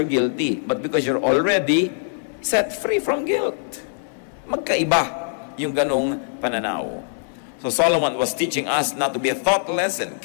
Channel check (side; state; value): right; silent; 64 dB below the other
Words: guilty, but because you're already set free from guilt. Magkaiba yung ganong pananaw. So Solomon was teaching us not to be thoughtless and